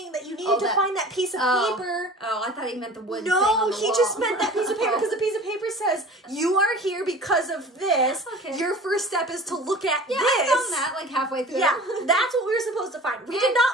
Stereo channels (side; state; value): both; normal; correlation 0.41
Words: that you needed to find that piece of paper. Oh, I thought he meant the wood thing No, on the he wall. just meant that piece of paper because the piece of paper says, you are here because of this. Okay. Your first step is to look at this. I found that like halfway through. Yeah, that's what we were supposed to find. We did not